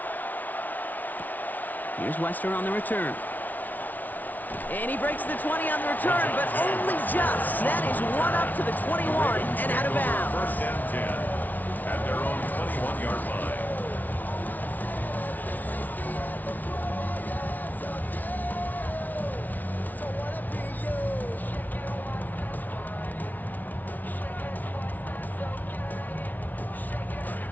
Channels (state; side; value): late; right; 0.079 ms